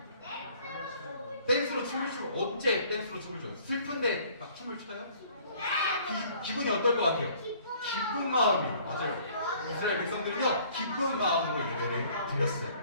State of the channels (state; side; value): inverted; both; correlation -0.56